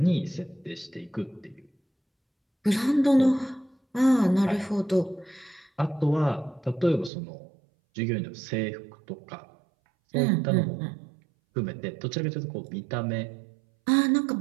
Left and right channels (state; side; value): drops out; left; at 7.1 s